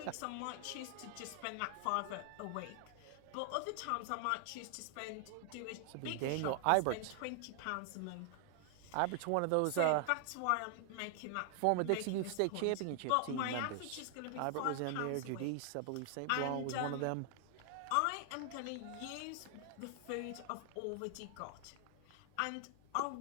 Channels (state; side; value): different; both; correlation 0.00